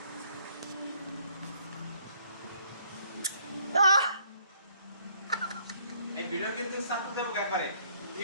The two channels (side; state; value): both; inverted; correlation -0.65